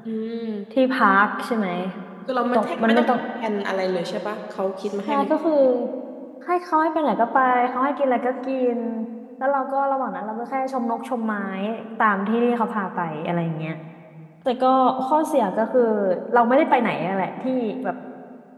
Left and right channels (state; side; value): identical; both; correlation 1.00